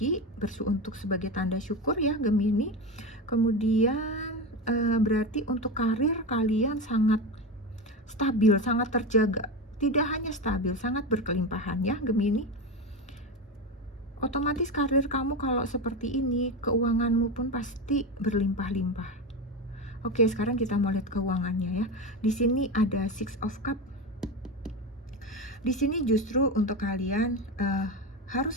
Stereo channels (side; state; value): both; normal; correlation 0.19